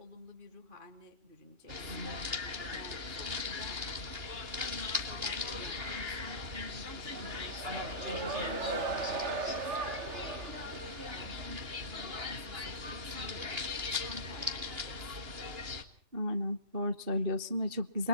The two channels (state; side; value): late; left; 2.9 ms